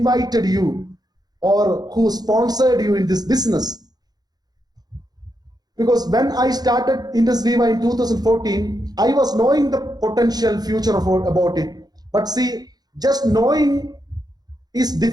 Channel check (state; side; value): late; left; 0.19 ms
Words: you or who sponsored you in this business. Because when I started Indus Viva in 2014, I was knowing the potential future about it. But see, just knowing is